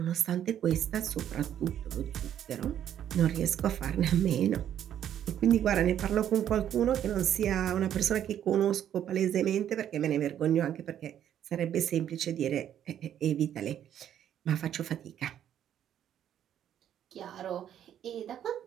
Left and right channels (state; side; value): quieter; left; 10.3 dB